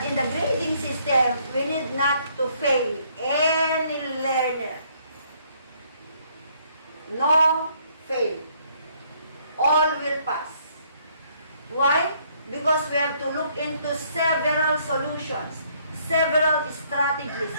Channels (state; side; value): inverted; both; correlation -0.66